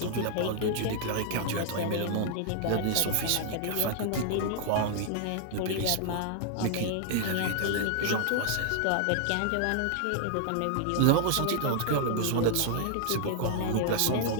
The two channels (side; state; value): both; different; correlation 0.00